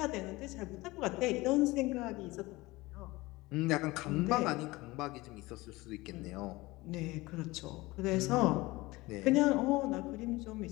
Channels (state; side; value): quieter; right; 21.0 dB